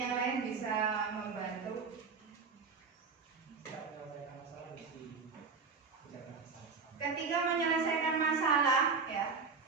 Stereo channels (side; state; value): left; quieter; 4.9 dB